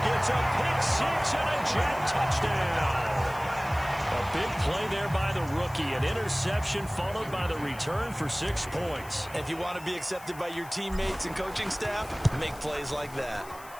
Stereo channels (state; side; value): noise; left; hiss, 20 dB below the sound